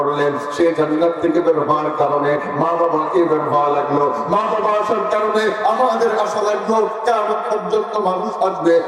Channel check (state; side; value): identical; both; correlation 1.00